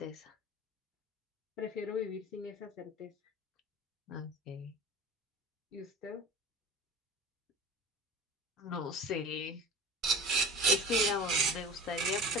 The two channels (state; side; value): normal; both; correlation 0.34